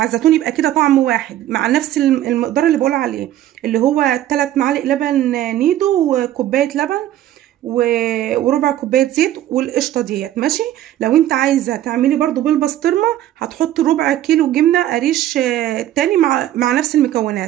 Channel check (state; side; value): quieter; left; 12.9 dB